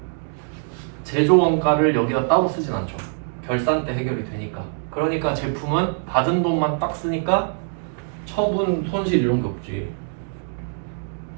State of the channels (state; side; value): silent; left; 62 dB below the other